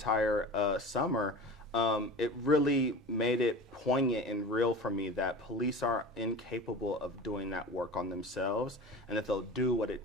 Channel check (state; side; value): normal; both; correlation 0.34